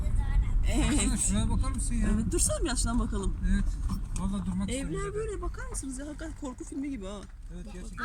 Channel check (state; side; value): identical; both; correlation 1.00